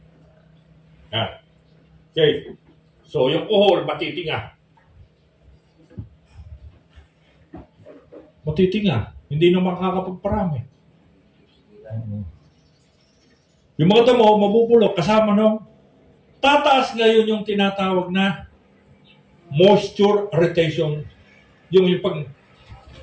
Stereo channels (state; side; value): identical; both; correlation 1.00